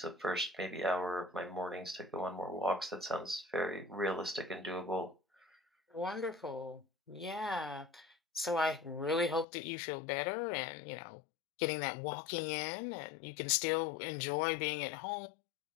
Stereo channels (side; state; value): right; drops out; at 9.5 s